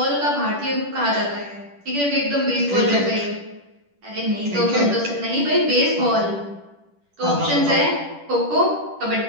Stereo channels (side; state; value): left; late; 10 ms